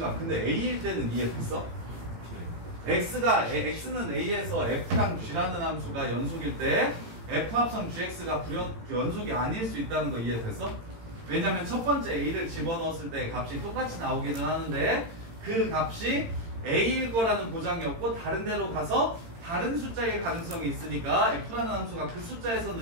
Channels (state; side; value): late; left; 18 ms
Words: 근데 A일 때는 이해됐어? X는 A에서 F랑 G라는 함수가 연속일 때 F 합성 GX가 연속이 아닐 수 있다는 거 이해됐어? 왜냐면 첫 번째 A를 집어넣었을 때 값이 똑같이 나오기는 하는데 그 값이 A일 거라는 보장이 없고 다른 데로 가서 다른 숫자일 가능성이 있으니까 F라는 함수가 그